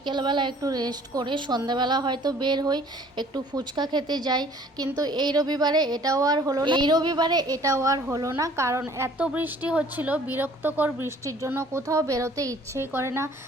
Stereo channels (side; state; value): both; normal; correlation 0.54